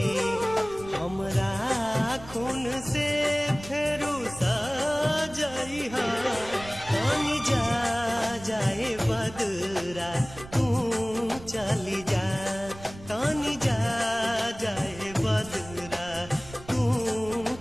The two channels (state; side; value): noise; right; rumble, 17 dB below the sound